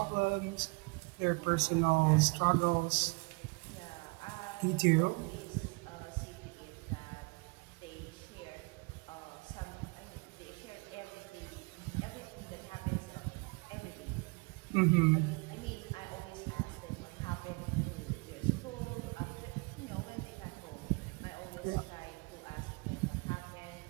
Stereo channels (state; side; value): quieter; left; 29.2 dB